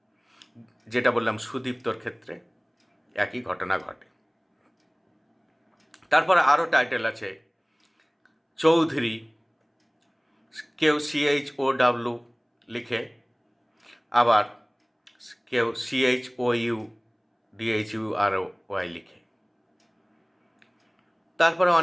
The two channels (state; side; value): identical; both; correlation 1.00